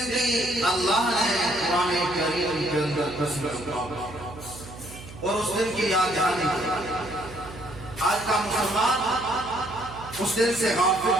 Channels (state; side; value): noise; right; hum, 15 dB below the sound